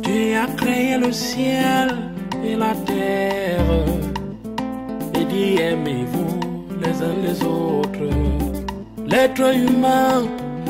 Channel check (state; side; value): identical; both; correlation 1.00